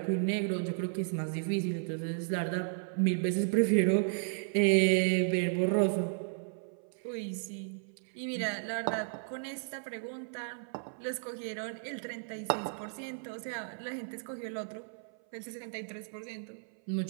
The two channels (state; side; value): silent; left; 55 dB below the other